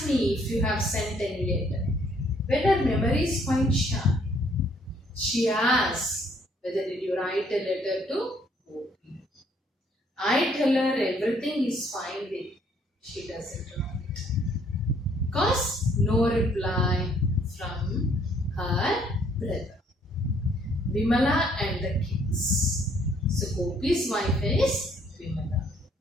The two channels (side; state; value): both; normal; correlation 0.65